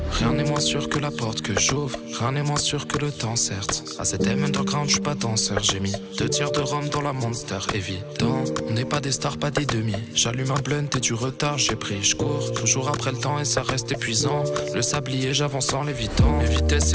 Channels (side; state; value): both; identical; correlation 1.00